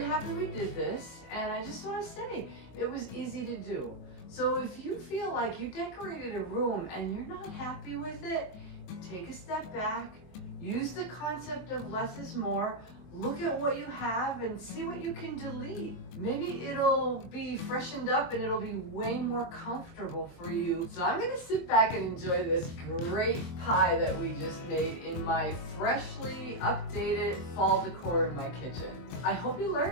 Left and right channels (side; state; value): right; late; 23 ms